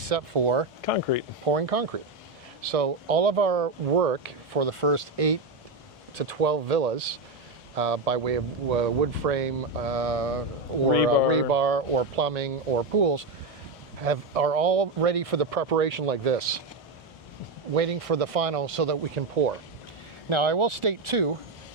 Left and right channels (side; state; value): left; quieter; 3.4 dB